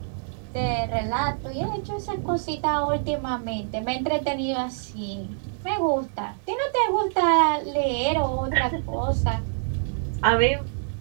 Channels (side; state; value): left; silent; 61 dB below the other